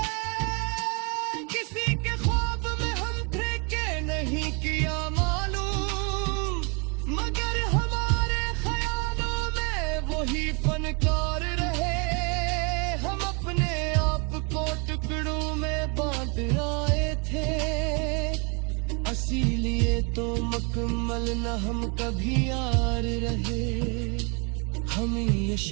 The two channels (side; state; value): left; quieter; 34.2 dB